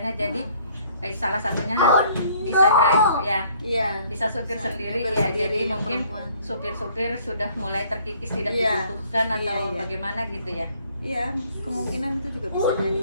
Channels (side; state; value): both; inverted; correlation -0.60